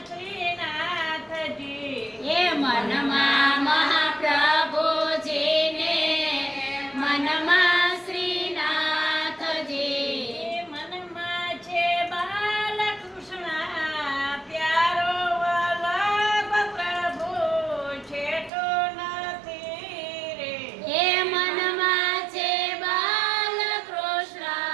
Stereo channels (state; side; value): drops out; left; at 18.5 s